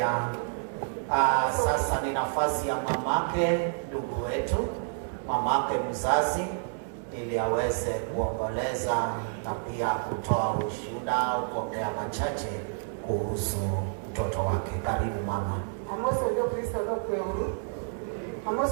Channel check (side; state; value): left; silent; digital silence